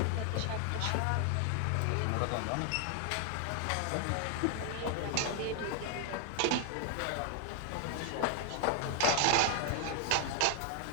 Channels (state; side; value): different; both; correlation 0.00